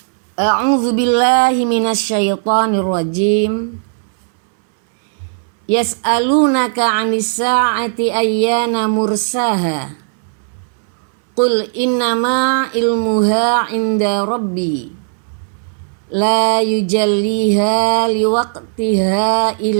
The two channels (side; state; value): left; silent; 64 dB below the other